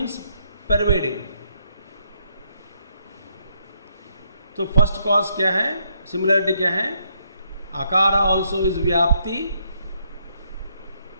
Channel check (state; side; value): inverted; both; correlation -0.74